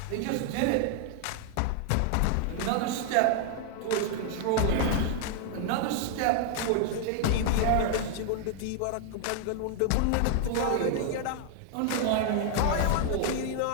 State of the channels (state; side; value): different; both; correlation 0.00